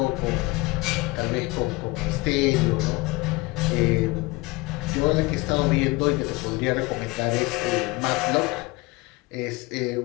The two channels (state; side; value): quieter; right; 23.3 dB